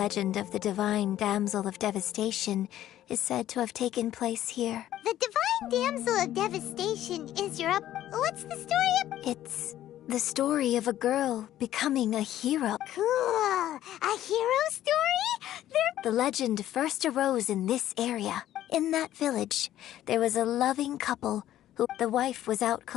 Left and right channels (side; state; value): right; quieter; 12.8 dB